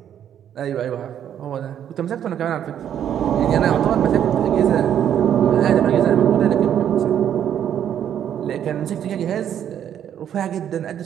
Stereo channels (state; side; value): quieter; left; 9.8 dB